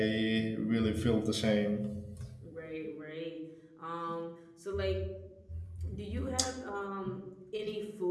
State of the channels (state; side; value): identical; both; correlation 1.00